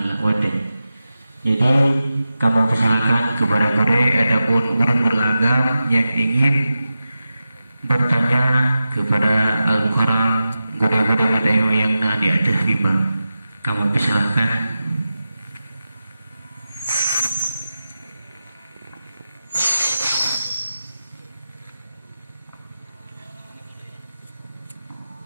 Jadi kamu persilakan kepada mereka ataupun orang beragam yang ingin bertanya kepada Al-Mukarram guru-guru yang di atas lima. Kamu persilakan.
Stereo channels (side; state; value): both; inverted; correlation -0.92